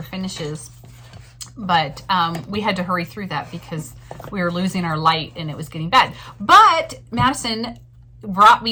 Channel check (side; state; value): both; identical; correlation 1.00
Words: finishes. But we had to hurry through that because we were losing our light and it was getting bad. But Madison brought